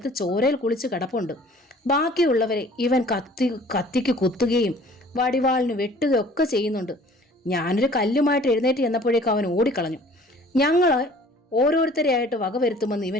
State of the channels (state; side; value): normal; both; correlation 0.51